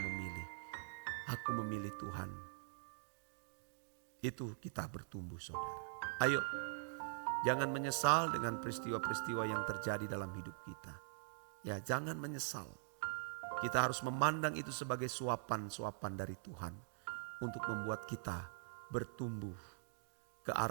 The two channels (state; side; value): silent; left; digital silence